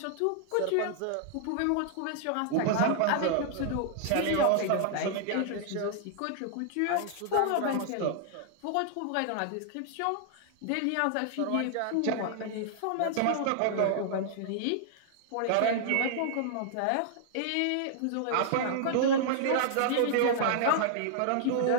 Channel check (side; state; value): both; different; correlation -0.01